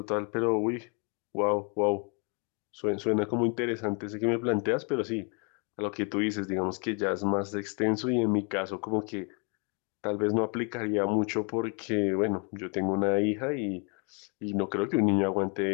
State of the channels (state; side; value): quieter; right; 35.8 dB